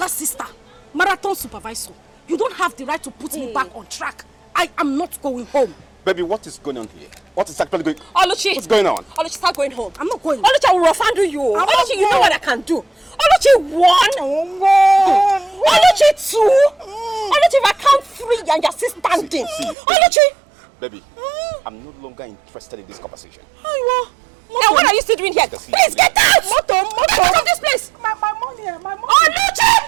sister, marathon supervisor. You don't have the right to put me back on track. I am not going home. Baby, what is going on here? What is actually going on? Oluchi! What's going on? Oluchi, start going home. I'm not going. Oluchi, I will rough-handle you. Oluchi, you know what I can do. Oluchi, 1. Oluchi, 2. Oluchi, if I count 3 and you're still standing. See, Oluchi! Baby, I'm no longer interested in this conversation. And what are you still doing here? Please get out! Get out of this place! My money, my money.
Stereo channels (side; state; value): left; drops out; at 19.8 s